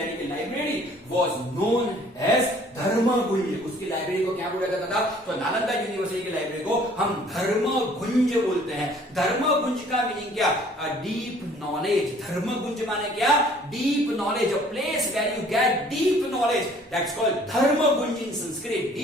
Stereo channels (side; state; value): both; normal; correlation 0.56